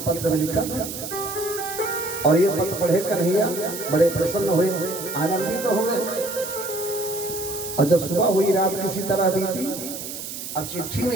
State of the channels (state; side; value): noise; right; hiss, 8 dB below the sound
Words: में लिखा था और ये पत्र पढ़े कन्हैया बड़े प्रसन्न हुए, आनंदित तो हुए। और जब सुबह हुई, रात किसी तरह बीती, अब चिट्ठी